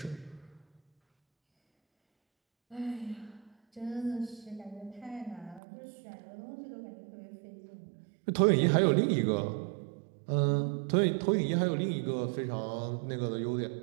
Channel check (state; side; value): drops out; left; at 5.6 s